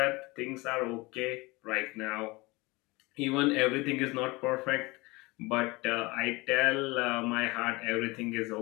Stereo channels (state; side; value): quieter; right; 23.5 dB